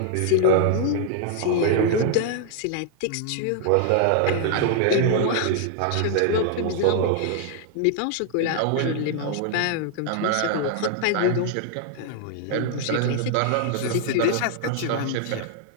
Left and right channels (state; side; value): different; both; correlation 0.00